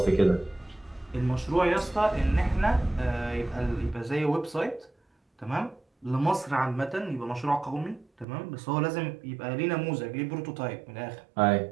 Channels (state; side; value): drops out; left; at 8.2 s